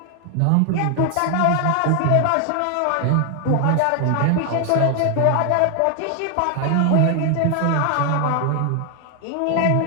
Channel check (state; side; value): different; both; correlation 0.00